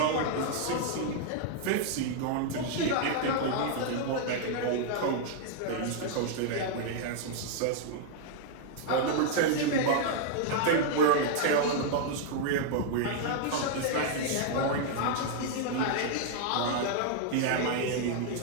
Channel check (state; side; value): different; both; correlation -0.01